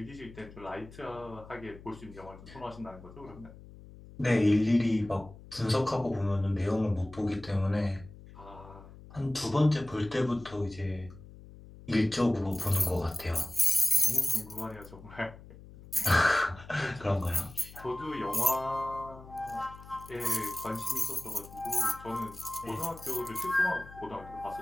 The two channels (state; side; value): noise; left; hum, 18 dB below the sound